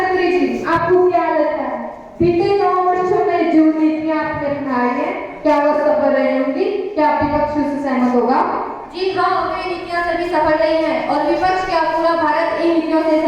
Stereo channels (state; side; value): identical; both; correlation 1.00